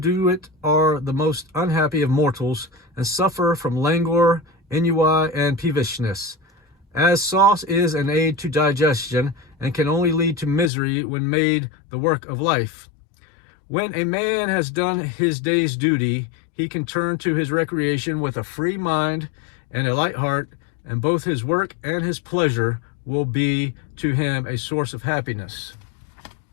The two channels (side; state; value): right; drops out; at 10.7 s